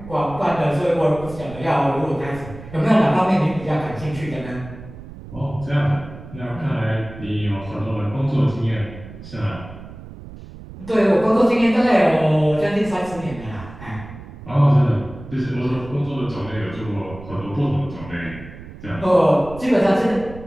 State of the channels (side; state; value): right; noise; rumble, 15 dB below the sound